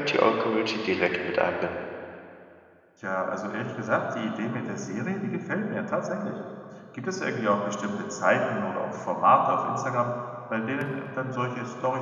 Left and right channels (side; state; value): both; identical; correlation 1.00